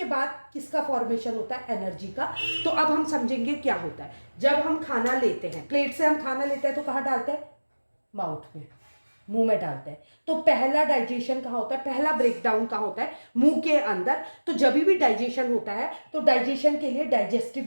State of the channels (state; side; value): inverted; both; correlation -1.00